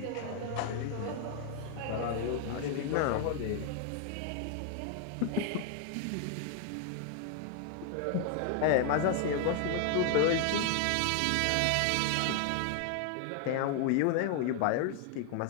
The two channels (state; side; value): different; both; correlation 0.00